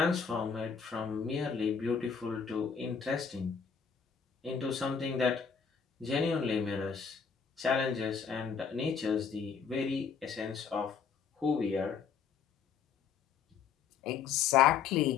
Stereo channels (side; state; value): right; quieter; 6.5 dB